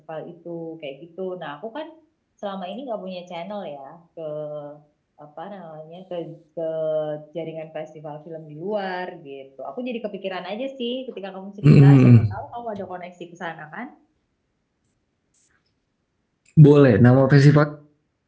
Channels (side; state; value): both; identical; correlation 1.00